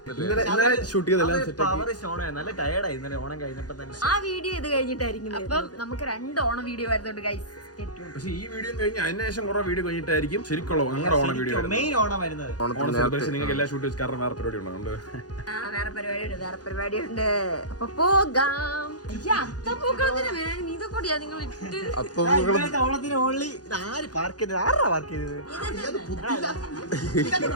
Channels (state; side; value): late; right; 0.68 ms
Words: ഷൂട്ട് ചെയ്തെല്ലാം നല്ല ടയർഡായി ഇന്നലെ ഓണം കഴിഞ്ഞപ്പോ തന്നെ. ആ വീഡിയോ ഇത് കഴിഞ്ഞിട്ടായിരിക്കും. അപ്പം നമുക്ക് 2 ഓണം വീഡിയോ വരുന്നുണ്ട് ഗൈസ്. പക്ഷെ ഈ വീഡിയോ കഴിഞ്ഞ് അതിനുശേഷം കുറെ വീഡിയോ കഴിഞ്ഞിട്ടായിരിക്കും ശരിക്കുള്ള ഞങ്ങളുടെ ഓണം വീഡിയോ മെയിൻ ഓണം വരുന്നത്. ഓണം സെലിബ്രേഷൻ നിങ്ങൾക്ക് എല്ലാ ഷൂട്ട് വെച്ച് കാരണം വേറെ പരിപാടി ഉണ്ടോ? വേറെ പരിപാടിയുണ്ട്. അപ്പൊ പോകാം. ഇതൊക്കെ നിങ്ങൾ ഇട്ട് ഓണത്തിന് ഓൺലി ആര് പാർക്ക് ചെയ്തത്? ആരാ പാർക്ക് ചെയ്തത്?